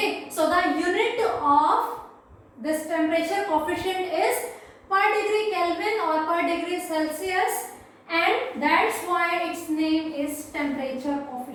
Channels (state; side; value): identical; both; correlation 1.00